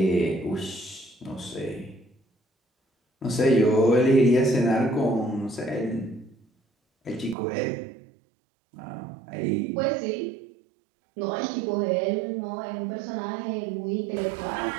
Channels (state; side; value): drops out; left; at 7.4 s